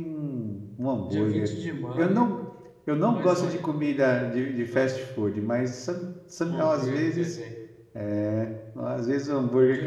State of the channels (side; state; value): both; identical; correlation 1.00